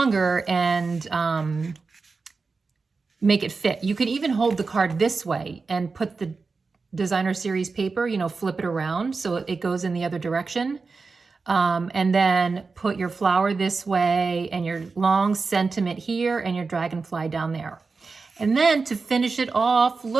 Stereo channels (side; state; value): left; quieter; 4.4 dB